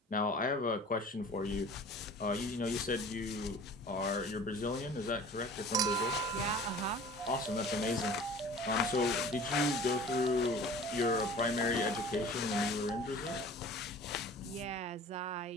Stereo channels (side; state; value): both; normal; correlation 0.44